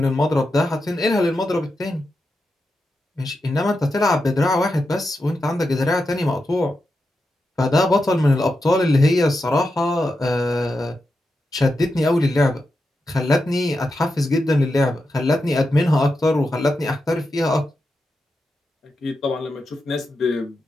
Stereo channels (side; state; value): both; normal; correlation 0.88